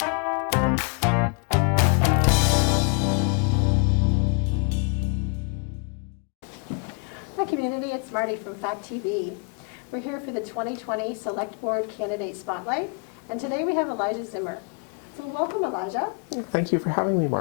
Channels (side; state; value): right; quieter; 36.9 dB